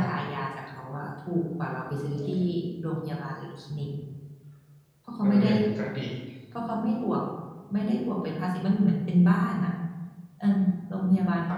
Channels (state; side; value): identical; both; correlation 1.00